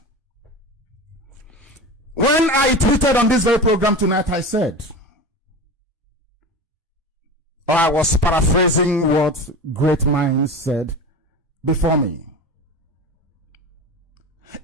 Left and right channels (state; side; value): normal; both; correlation 0.29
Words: When I tweeted on this very program tonight, I said, or I was paraphrasing what great minds said before me.